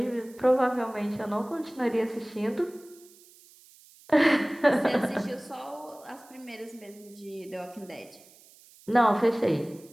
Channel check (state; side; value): noise; right; hiss, 25 dB below the sound